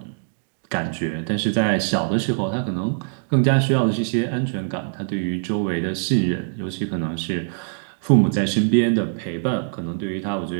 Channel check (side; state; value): left; silent; digital silence